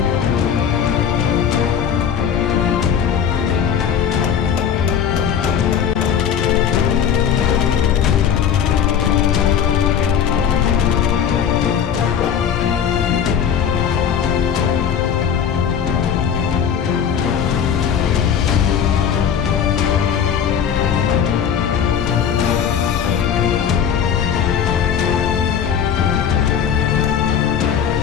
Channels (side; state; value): right; quieter; 8.2 dB